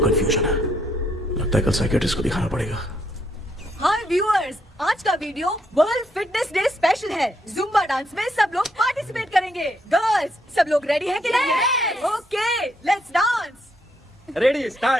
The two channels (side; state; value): both; normal; correlation 0.74